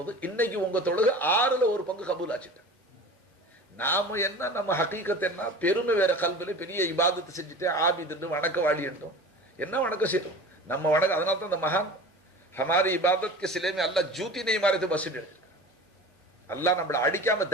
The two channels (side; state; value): both; normal; correlation 0.37